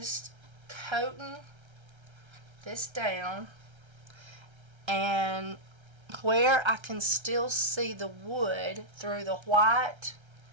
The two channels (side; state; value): left; late; 1.3 ms